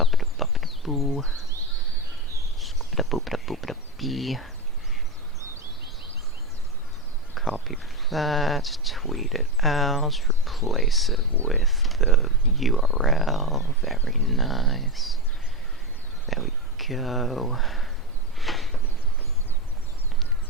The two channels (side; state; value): both; normal; correlation 0.14